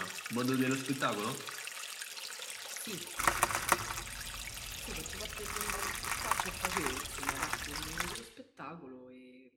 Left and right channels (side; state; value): both; identical; correlation 1.00